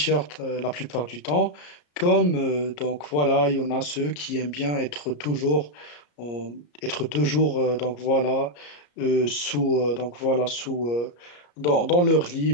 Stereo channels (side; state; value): right; late; 34 ms